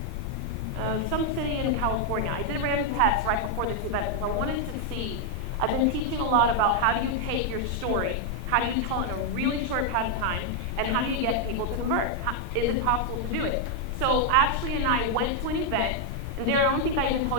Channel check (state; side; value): late; left; 16 ms